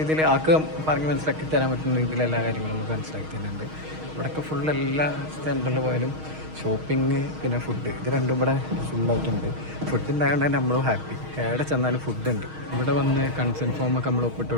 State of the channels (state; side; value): late; left; 6.4 ms